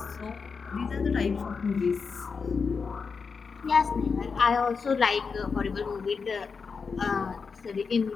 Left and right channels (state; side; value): quieter; right; 5.3 dB